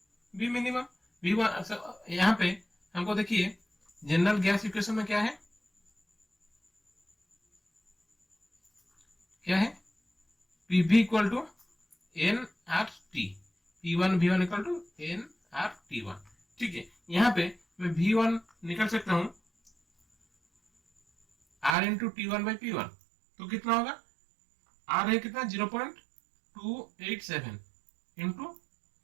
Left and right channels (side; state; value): left; drops out; at 21.8 s